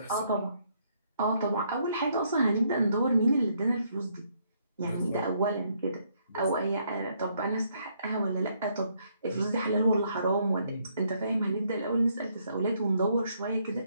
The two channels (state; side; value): inverted; both; correlation -0.71